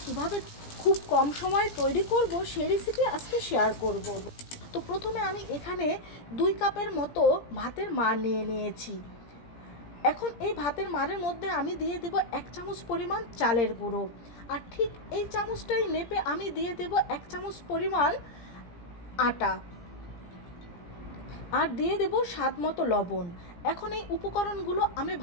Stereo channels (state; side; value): late; right; 17 ms